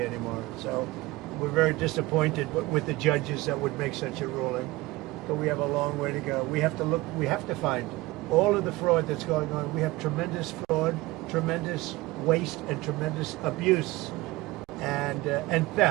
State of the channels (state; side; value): quieter; left; 20.3 dB